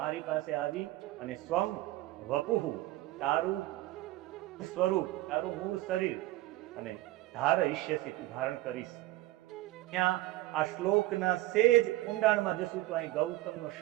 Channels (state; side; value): quieter; left; 17.1 dB